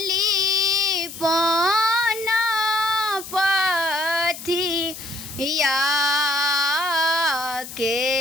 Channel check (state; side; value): noise; left; hiss, 12 dB below the sound